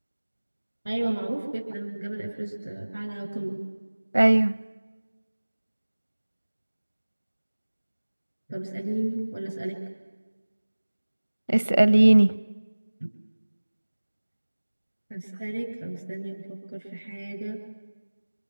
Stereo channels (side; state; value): both; inverted; correlation -1.00